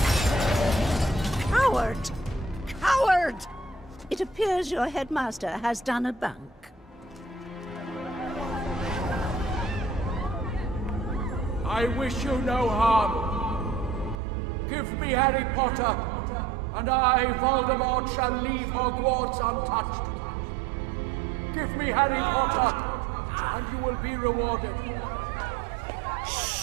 Coward! Coward! It appears your headmaster has done a bunk. I wish you no harm. Give me Harry Potter, and I, Voldemort, shall leave Hogwarts untouched. Give me Harry Potter, and you will be rewarded.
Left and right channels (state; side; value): drops out; left; at 14.2 s